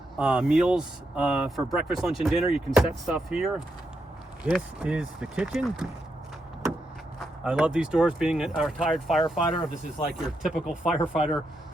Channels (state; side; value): normal; both; correlation 0.83